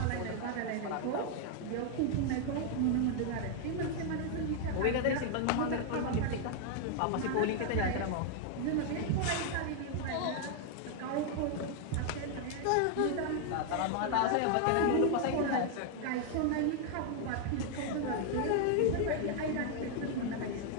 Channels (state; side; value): different; both; correlation 0.00